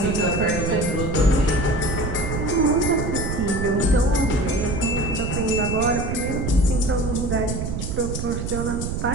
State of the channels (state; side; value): noise; right; rumble, 4 dB below the sound